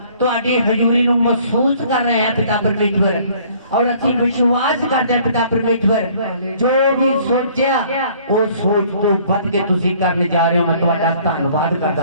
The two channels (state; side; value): inverted; both; correlation -0.57